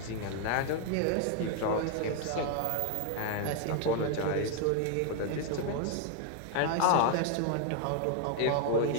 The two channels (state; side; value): different; both; correlation 0.00